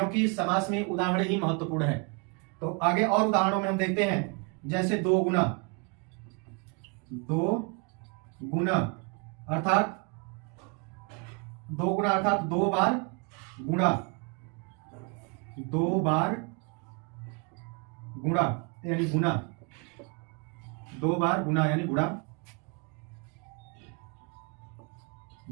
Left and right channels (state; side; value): quieter; left; 33.2 dB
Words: समास में उदाहरण ही महत्वपूर्ण है। तो आगे और उदाहरणों में हम देखते हैं। जैसे 2 गुना, 2 गुना अर्थात 2 गुना अर्थात 2 बार गुणा, 2 बार गुणा यानी गुना, 2 बार गुना यानी गुणा।